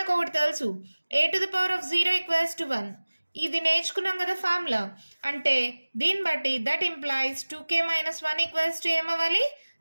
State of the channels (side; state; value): both; inverted; correlation -1.00